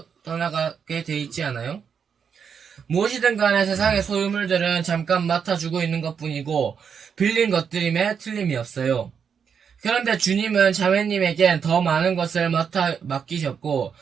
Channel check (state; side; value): quieter; left; 6.9 dB